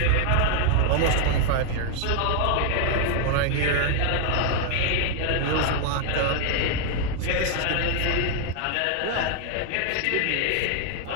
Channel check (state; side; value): different; both; correlation 0.00